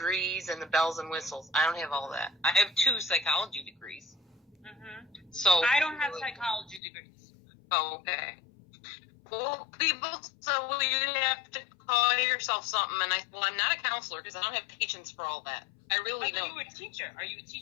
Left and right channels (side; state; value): right; drops out; at 6.8 s